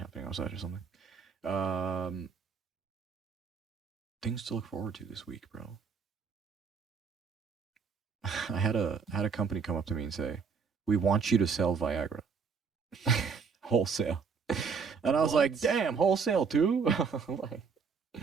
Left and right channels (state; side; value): quieter; left; 5.6 dB